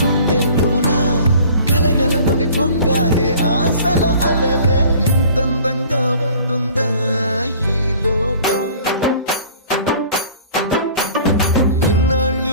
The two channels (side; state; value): both; inverted; correlation -0.48